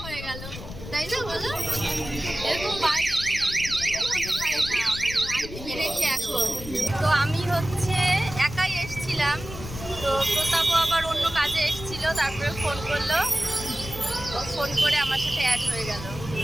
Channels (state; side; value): noise; left; rumble, 11 dB below the sound